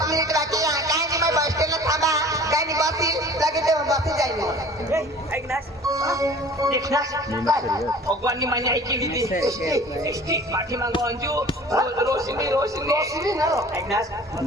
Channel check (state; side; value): normal; both; correlation 0.46